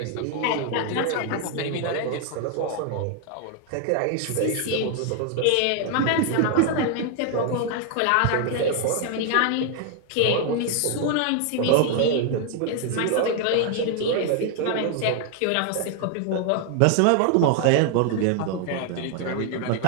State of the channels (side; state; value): both; different; correlation 0.00